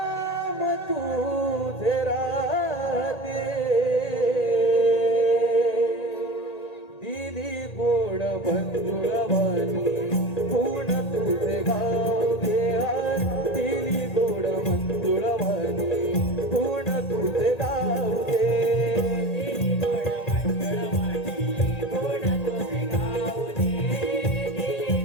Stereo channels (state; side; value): late; right; 1.8 ms